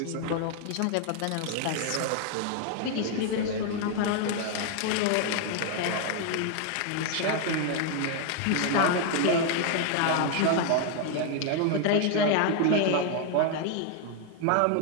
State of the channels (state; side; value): different; both; correlation 0.01